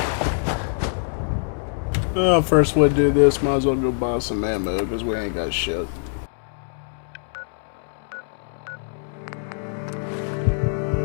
Well, first we do this, might as well go buy some ammo, because we ain't got shit.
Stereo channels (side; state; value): right; silent; 61 dB below the other